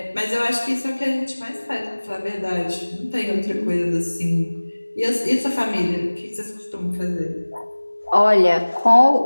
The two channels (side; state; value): both; inverted; correlation -1.00